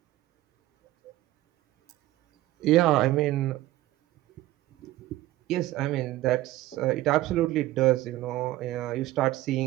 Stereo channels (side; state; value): left; quieter; 16.3 dB